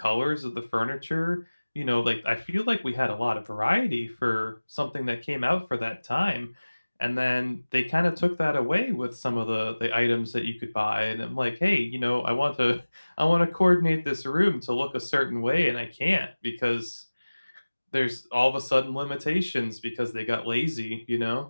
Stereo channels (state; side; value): inverted; both; correlation -1.00